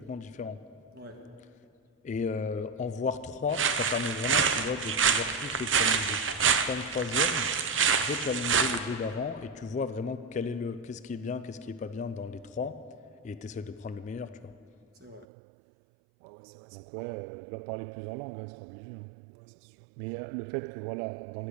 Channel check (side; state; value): left; drops out; at 15.2 s